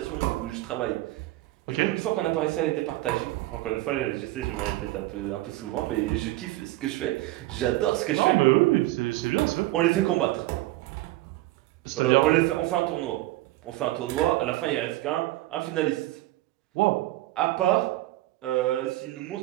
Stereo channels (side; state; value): left; quieter; 17.5 dB